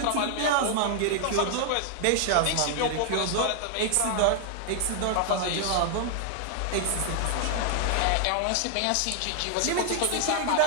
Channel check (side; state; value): both; different; correlation 0.00